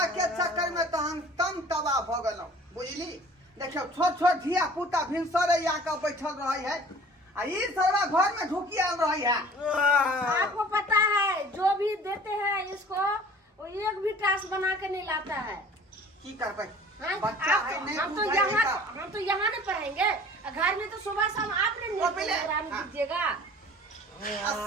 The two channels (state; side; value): normal; both; correlation 0.47